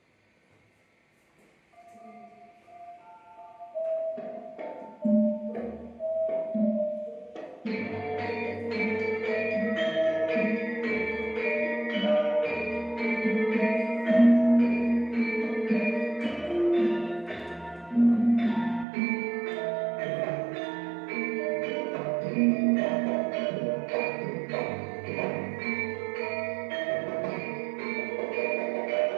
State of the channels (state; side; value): drops out; left; at 18.9 s